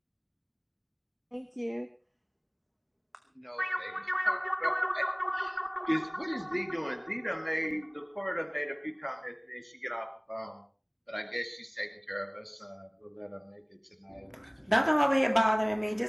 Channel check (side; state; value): both; identical; correlation 1.00